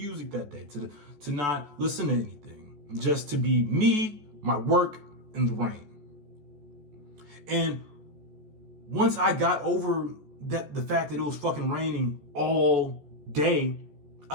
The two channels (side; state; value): left; late; 14 ms